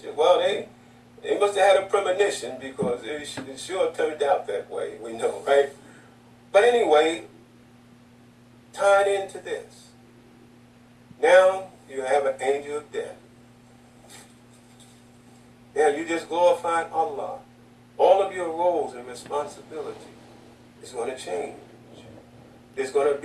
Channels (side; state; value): both; identical; correlation 1.00